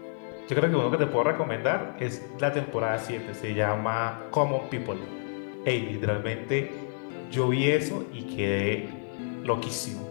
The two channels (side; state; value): right; silent; 59 dB below the other